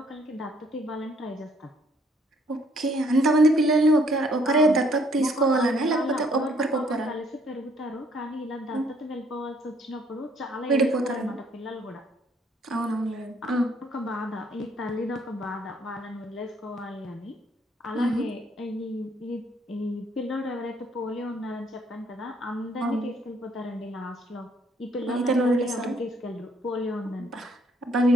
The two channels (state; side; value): normal; both; correlation 0.65